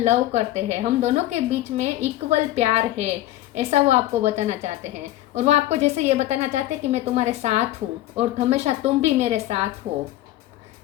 लव करते हैं, हम दोनों के बीच में इक्वल प्यार है, ऐसा वो आपको बताना चाहते हैं। और वो आपको जैसे ये बताना चाहते हैं कि मैं तुम्हारे साथ हूँ और हमेशा तुम भी मेरे साथ हो,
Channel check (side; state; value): right; quieter; 14.8 dB